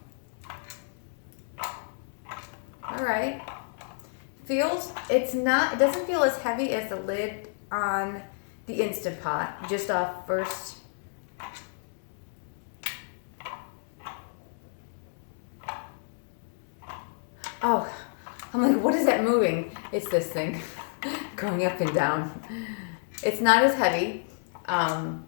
All right. It doesn't feel as heavy as the lid on the InstaPot, just off first. Oh, I'm like, what is that moving? It's this thing going up and down. It's not as heavy. I'm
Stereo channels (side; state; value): right; silent; digital silence